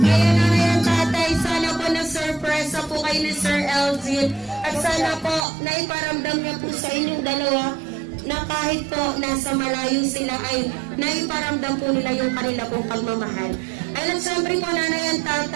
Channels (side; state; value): left; drops out; at 5.5 s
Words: Ayan, tatay. Sana po na-surprise po kayo ni Sir Elgin. At sana po naiparamdam niya po sa inyong dalawa na kahit po nasa malayo sila ay naiparamdam po nila yung kanila pong pagmamahal. At syempre po nanay at